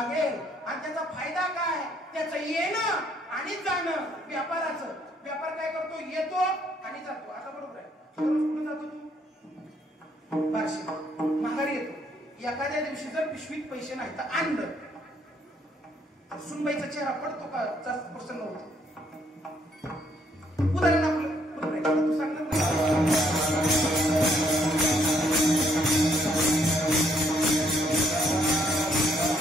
आणि त्याचा फायदा काय? त्याचं येणं आणि जाणं. व्यापाराचं व्यापार काय करतो? येतो आणि जातो. आता बरोबर आहे, कुठे जातो तू? बार्शी माघारी येतो. एखाद्या दिवशी जर पिशवीत पैसे नाही तर आणलं, सुनबाईचा चेहरा पडतो का? जास्त प्रसन्न होतो. उदाहरण आपलं बरोबर आहे. तू सांगणार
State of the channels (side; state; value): both; normal; correlation 0.69